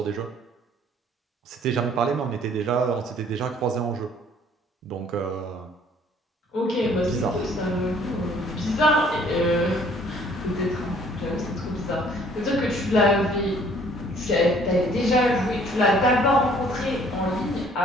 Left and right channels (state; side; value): normal; both; correlation 0.58